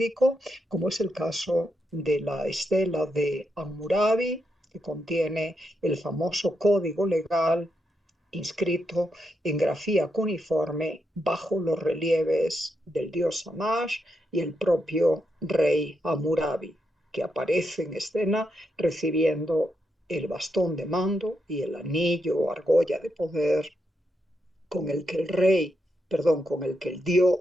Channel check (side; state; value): both; normal; correlation 0.82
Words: como es el caso de la estela de Hammurabi, que contiene el famoso código legal inscrito en grafía cuneiforme bajo los relieves del dios Shamash y el propio rey Hammurabi. que aparece en escena recibiendo el bastón de mando y el anillo o argolla de poder con el que con el que el